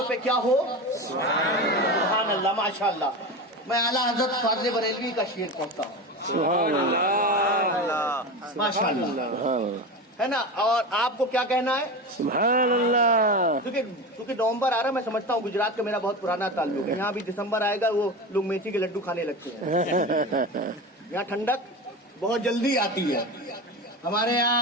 پہ کیا ہو؟ سبحان اللہ. ماشاء اللہ. میں اعلیٰ حضرت فاضل بریلوی کا شعر پڑھتا ہوں. سبحان اللہ. ماشاء اللہ ہے نا. اور آپ کو کیا کہنا ہے؟ سبحان اللہ. کیونکہ نومبر آ رہا ہے, میں سمجھتا ہوں گجرات کا میرا بہت پرانا تعلق ہے. یہاں بھی دسمبر آئے گا, وہ لوگ میتھی کے لڈو کھانے لگتے ہیں. یہاں ٹھنڈک بہت جلدی آتی ہے. ہمارے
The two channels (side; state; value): both; normal; correlation 0.25